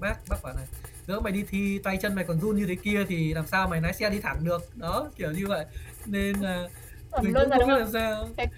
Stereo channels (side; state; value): both; identical; correlation 1.00